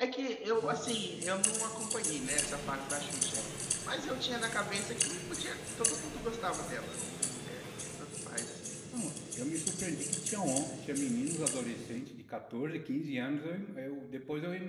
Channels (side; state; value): both; identical; correlation 1.00